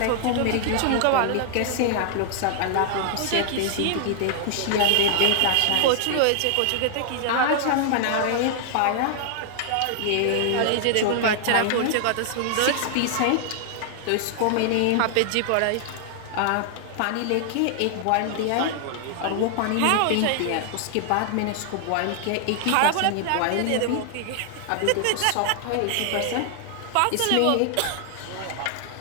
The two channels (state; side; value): different; both; correlation 0.00